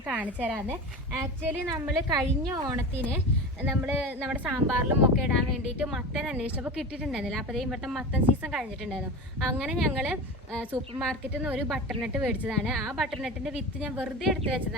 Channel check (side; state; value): both; normal; correlation 0.29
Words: കാണിച്ചു തരാമെന്ന്. ആക്ച്വലി നമ്മൾ കഴിഞ്ഞ ഓണത്തിന് നമ്മുടെ സാമ്പാറിലും ഒക്കെ ഇടാൻ വേണ്ടിയിട്ട് മത്തൻ അന്വേഷിച്ചപ്പോൾ കിട്ടിയിട്ടുണ്ടായിരുന്നില്ല. അപ്പോൾ ഇവിടുത്തെ മത്തൻ സീസൺ കഴിഞ്ഞിട്ടുണ്ടായിരുന്നു. അങ്ങനെ ഞങ്ങൾ സൂപ്പർ മാർക്കറ്റിൽ നിന്ന് ഒരു ബട്ടർനട്ട് മേടിച്ചതാണ്. ആ ബട്ടർനട്ടിൻ്റെ വിത്ത് ഞാൻ വെറുതെ എടുത്ത്